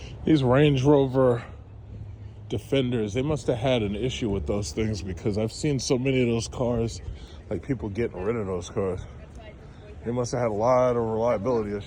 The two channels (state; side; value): identical; both; correlation 1.00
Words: These Range Rover Defenders, they must have had an issue with those things, because I've seen so many of those cars, like people getting rid of those cars. They must have had a lot of reliability